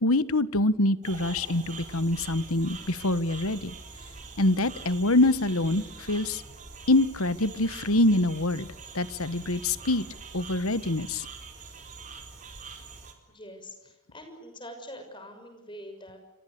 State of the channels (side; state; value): both; normal; correlation 0.30